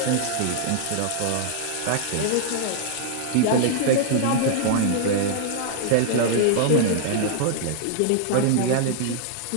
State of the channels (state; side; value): different; both; correlation -0.01